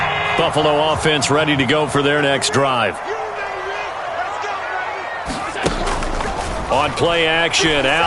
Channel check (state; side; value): identical; both; correlation 1.00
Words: Buffalo offense ready to go for their next drive. On play action,